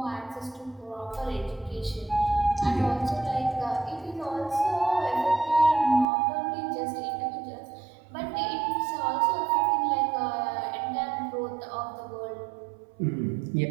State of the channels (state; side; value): drops out; left; at 6.1 s